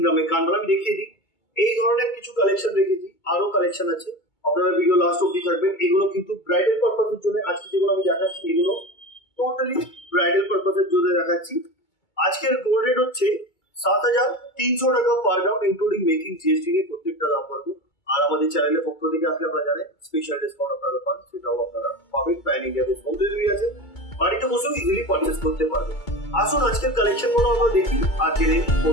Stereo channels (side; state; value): right; late; 2.2 ms